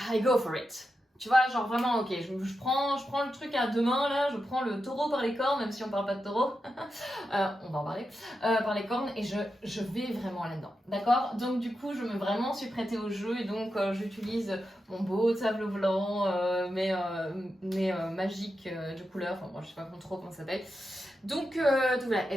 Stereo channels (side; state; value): both; normal; correlation 0.89